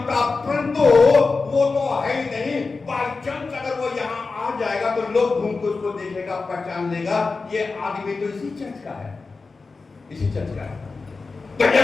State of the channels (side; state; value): right; quieter; 4.1 dB